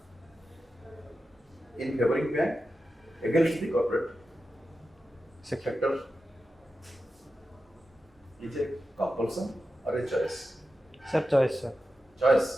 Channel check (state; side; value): normal; both; correlation 0.91